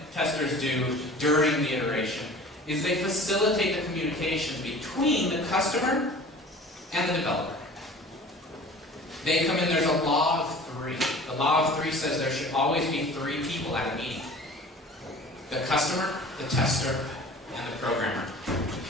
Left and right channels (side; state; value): both; normal; correlation 0.43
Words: testers do during the iteration is they facilitate the communication between the customer and the developer. They come in, there's a law of three. The law of three says there should always be 3 people at a meeting. The customer, the tester, and the programmer.